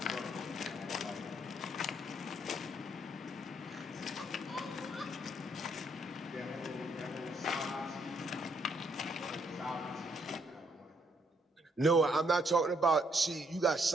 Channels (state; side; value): normal; both; correlation 0.71